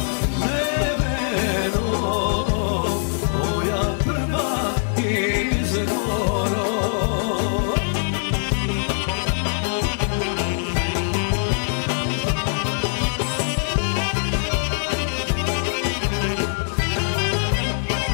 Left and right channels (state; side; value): silent; right; 64 dB below the other